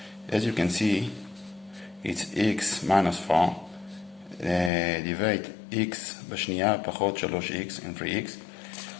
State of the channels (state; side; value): drops out; right; at 4.7 s